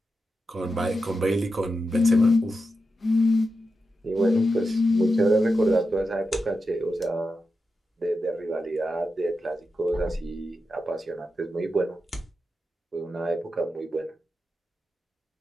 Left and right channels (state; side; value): normal; both; correlation 0.89